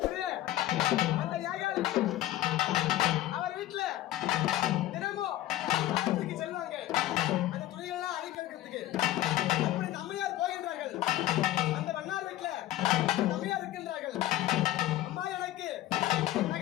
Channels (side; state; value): right; quieter; 14.6 dB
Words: அந்த யாகால் அவர் வீட்டுல தினமும் ஆற்றுக்கு செல்வாங்க. அந்த துணிகள்லாம் அழிக்கிறதுக்கு. அப்படி இந்த அம்மையார் போகின்றார்கள். அந்த வண்ணார் வீட்டுல அந்த அம்மையார் இருக்கின்றார்கள். அம்மா, எனக்கு